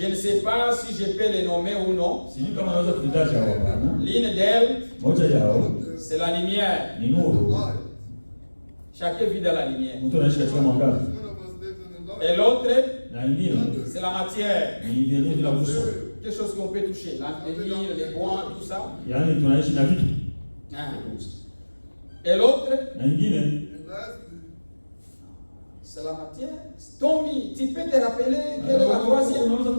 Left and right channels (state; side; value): inverted; both; correlation -1.00